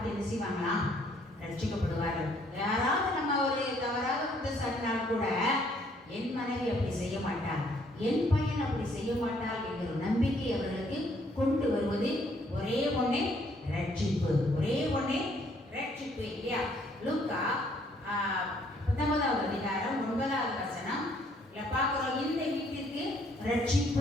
என்ன செய்வாங்களா? ரட்சிக்கப்படுவார்கள். யாராவது நம்ம ஒரு தவறாக குற்றம் சாட்டினால் கூட என் மனைவி அப்படி செய்ய மாட்டார், என் பையன் அப்படி செய்ய மாட்டார் என்கிற நம்பிக்கை அவர்களுக்கு கொண்டு வருவது ஒரே ஒண்ணே ரட்சிப்பு. ஒரே ஒண்ணே ரட்சிப்பு இல்லையா? லூக்கா 19வது அதிகாரம் 9வது வசனம் பார்க்கிறோம். இந்த வீட்டிற்கு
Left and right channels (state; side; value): normal; both; correlation 0.65